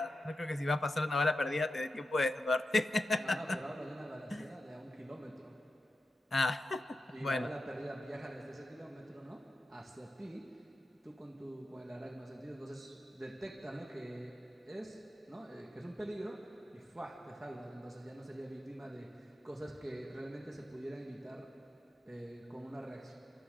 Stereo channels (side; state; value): both; normal; correlation 0.90